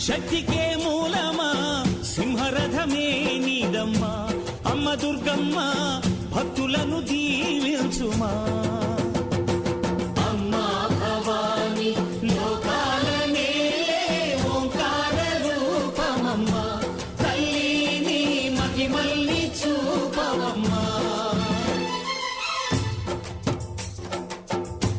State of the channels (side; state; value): both; identical; correlation 1.00